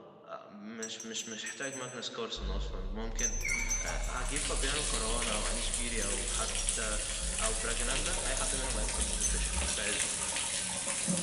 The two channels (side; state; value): both; identical; correlation 1.00